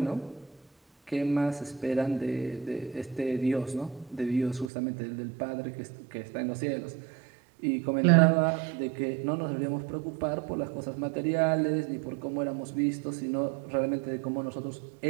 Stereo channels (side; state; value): left; drops out; at 4.7 s